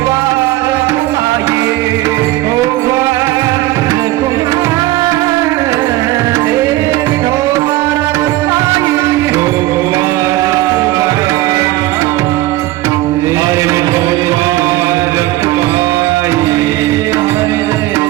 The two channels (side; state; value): left; quieter; 17.2 dB